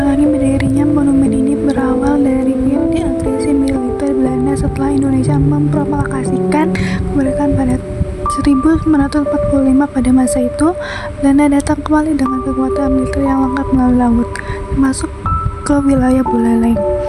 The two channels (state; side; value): identical; both; correlation 1.00